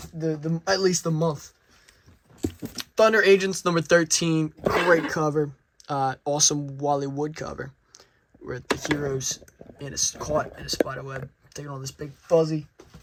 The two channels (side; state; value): both; identical; correlation 1.00